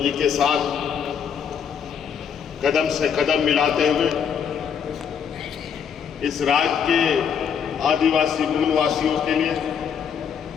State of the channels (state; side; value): quieter; right; 7.4 dB